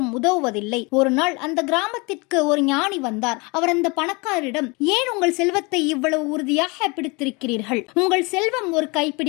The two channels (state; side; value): quieter; right; 27.9 dB